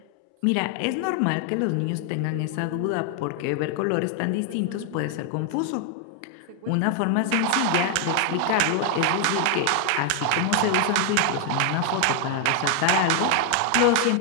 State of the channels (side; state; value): both; different; correlation 0.00